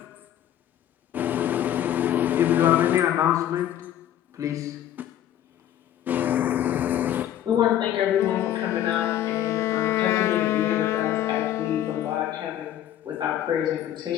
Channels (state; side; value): quieter; right; 11.5 dB